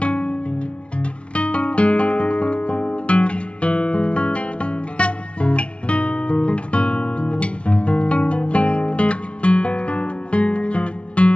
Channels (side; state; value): right; late; 0.060 ms